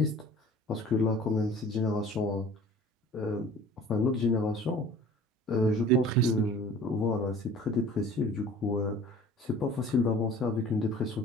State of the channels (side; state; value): both; normal; correlation 0.46